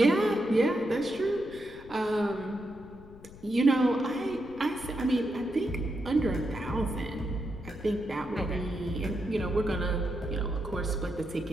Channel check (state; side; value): noise; left; rumble, 20 dB below the sound